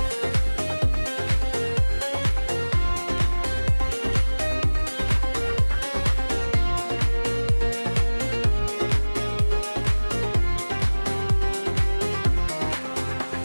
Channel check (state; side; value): inverted; both; correlation -1.00